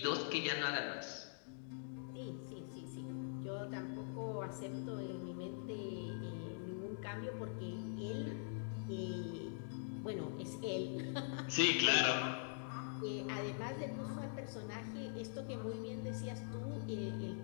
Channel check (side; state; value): right; silent; digital silence